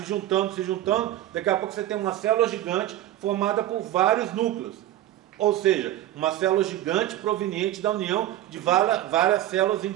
juntando, daqui a pouco você tem uma célula gigante formada por vários núcleos. Ou seja, uma célula gigante proveniente da união de várias células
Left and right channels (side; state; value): left; quieter; 13.6 dB